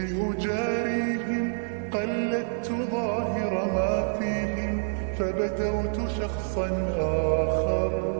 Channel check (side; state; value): left; silent; digital silence